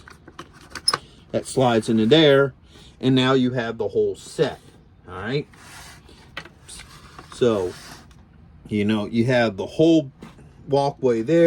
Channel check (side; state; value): both; identical; correlation 1.00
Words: that slides into there. And now you have the whole set. All right. So, you know, you have the whole walkway